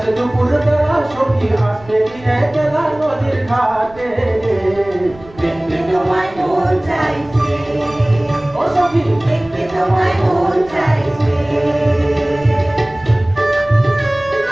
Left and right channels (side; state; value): right; noise; rumble, 22 dB below the sound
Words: দুপুর বেলা সখী আসবে কি একলা নদীর ঘাটে দেখতে তোমায় মন চাইছে ও সখী দেখতে তোমায় মন চাইছে